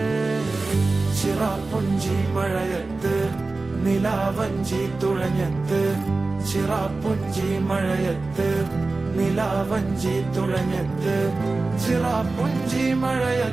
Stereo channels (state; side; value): quieter; left; 3.5 dB